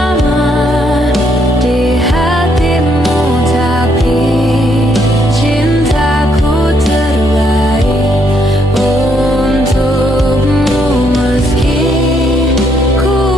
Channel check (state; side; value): normal; both; correlation 0.72